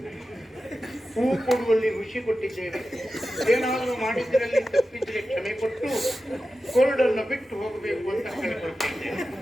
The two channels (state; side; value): normal; both; correlation 0.93